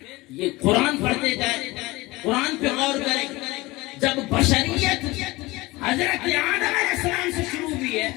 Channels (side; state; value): right; quieter; 21.1 dB